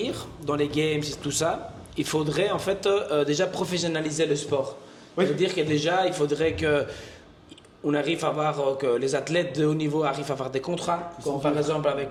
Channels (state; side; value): identical; both; correlation 1.00